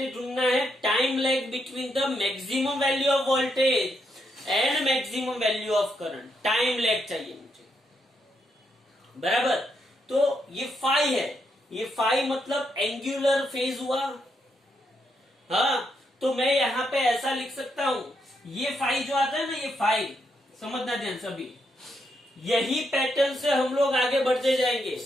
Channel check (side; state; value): both; normal; correlation 0.79